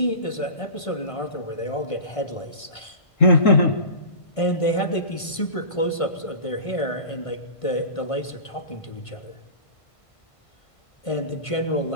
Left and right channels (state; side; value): late; right; 1.5 ms